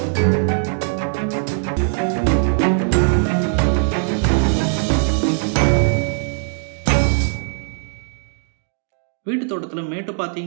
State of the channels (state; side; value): silent; left; 57 dB below the other